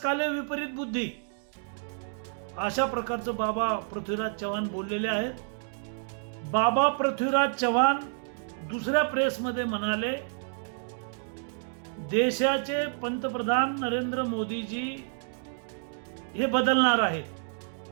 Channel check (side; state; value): left; silent; digital silence